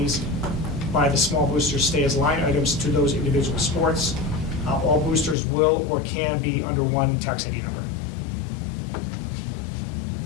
by the small boosters stay as line items to those individual sports. All boosters will or can be under one tax ID number.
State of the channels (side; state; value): right; drops out; at 5.4 s